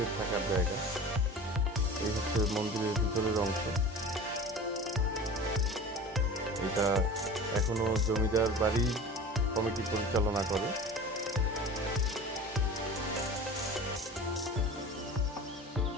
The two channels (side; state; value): both; normal; correlation 0.37